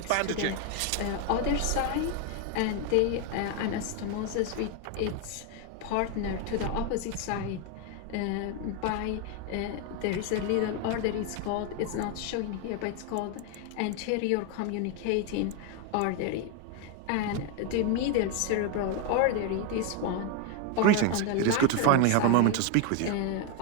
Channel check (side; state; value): both; different; correlation 0.01